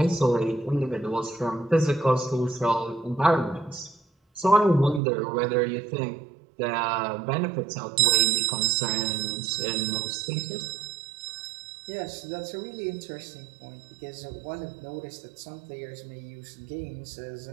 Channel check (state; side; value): drops out; left; at 5.0 s